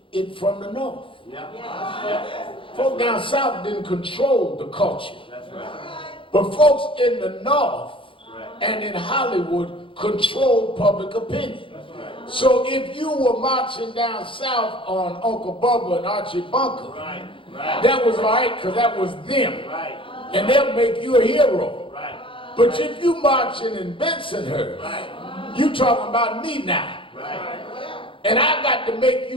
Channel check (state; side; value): late; right; 0.25 ms